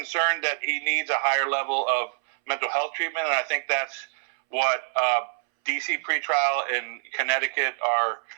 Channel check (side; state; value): left; silent; 61 dB below the other